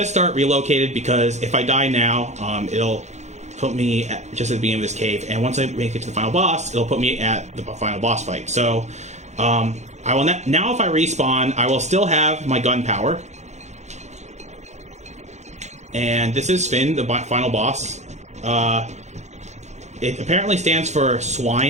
start relocated because if I die now, it'll put me just at the beginning of this cave. And once I make it to the final boss, it'll put me at the final boss fight. So, I will now if I respawn, I will still have my gunpowder. And this is Finn, the final boss. It apparently stands for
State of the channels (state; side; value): late; left; 0.33 ms